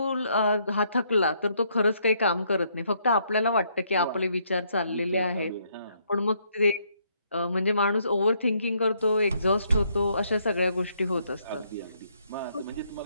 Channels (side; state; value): both; inverted; correlation -0.71